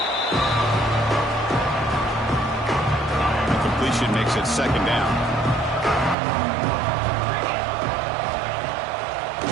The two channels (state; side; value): drops out; left; at 6.2 s